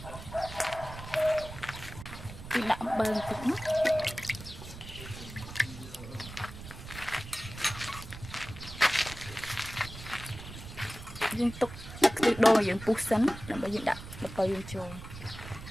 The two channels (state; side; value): noise; right; rumble, 12 dB below the sound